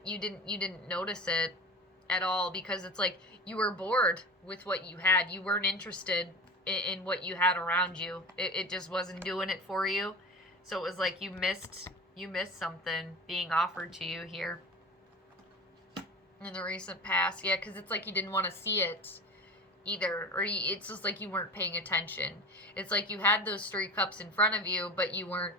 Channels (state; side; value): normal; both; correlation 0.32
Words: You didn't notice it at all, because it's like you were bored with what you had. You weren't interested in what you had around you. It just wasn't doing it for you. So it was like you missed something being offered to you here in the recent past. Yeah, because it's like you didn't want to see it either, or it's just like you weren't paying attention. It's like you had those three cups in front of you, but you weren't